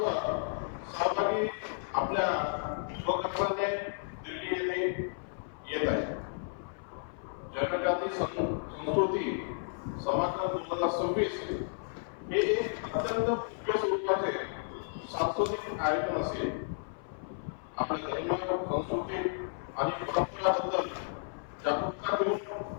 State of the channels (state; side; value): silent; right; 56 dB below the other